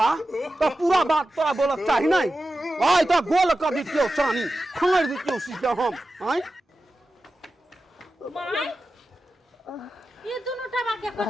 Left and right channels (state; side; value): normal; both; correlation 0.93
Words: तो पूरा बात तोरा बोलक चाही नहीं आई तो गोल कर दितियो चानी खंगड़ दितियो सीधा हम आई माय ये दोनों टबा के